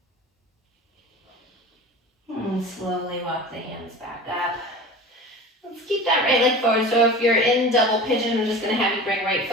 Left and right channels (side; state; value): both; normal; correlation 0.36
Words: And slowly walk the hands back up. Let's keep that right leg forward. So if you're in double pigeon, I'm just going to have you bring right